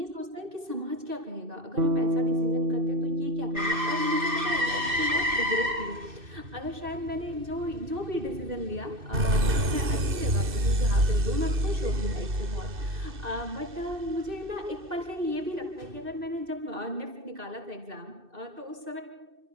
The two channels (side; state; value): left; late; 2.6 ms